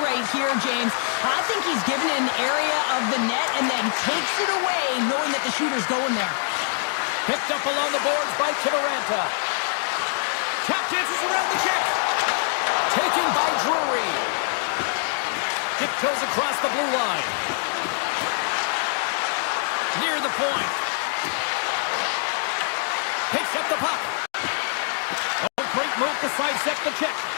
right here, James. I think he's given an area of the net and then takes it away, knowing that the shooter's going there. Picked up along the boards by Kiviranta. Tap dances around the check. Taken by Drury. Dip goes across the blue line. Near the point. Picks up the puck. Oh, great move to sidestep the check.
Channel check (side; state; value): right; silent; 62 dB below the other